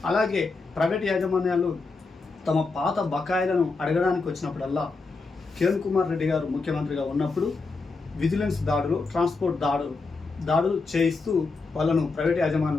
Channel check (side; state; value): right; quieter; 4.0 dB